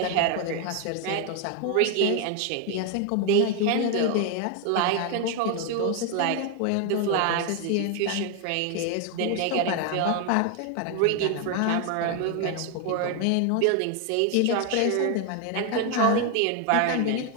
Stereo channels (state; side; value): different; both; correlation 0.01